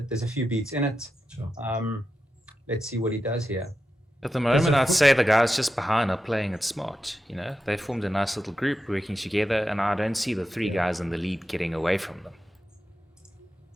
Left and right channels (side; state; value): both; normal; correlation 0.90